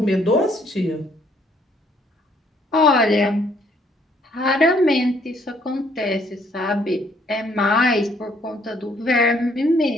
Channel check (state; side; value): normal; both; correlation 0.66